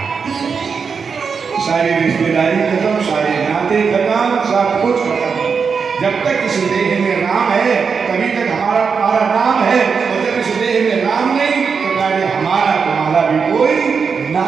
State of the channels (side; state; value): left; quieter; 5.7 dB